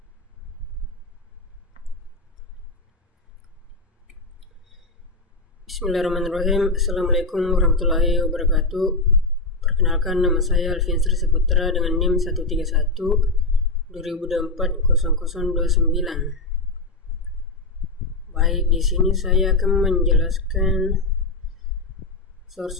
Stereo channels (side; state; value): right; quieter; 3.2 dB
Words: Assalamualaikum warahmatullahi wabarakatuh. Perkenalkan, nama saya Alfian Sri Saputra dengan NIM 131 2024 0029. Baik, di sini saya akan menjelaskan